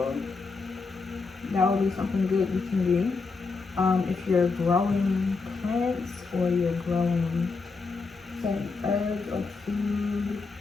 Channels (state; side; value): quieter; right; 4.3 dB